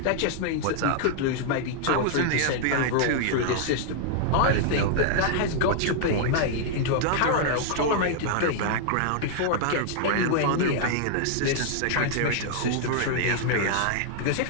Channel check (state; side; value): different; both; correlation -0.01